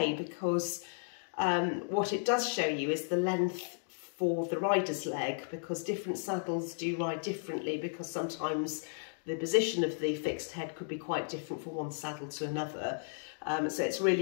because what it does show you is the length for the rider's leg, because different saddles do ride differently, because sometimes the position of the fixed head could be quite different from one saddle to another. So it's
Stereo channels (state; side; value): silent; right; digital silence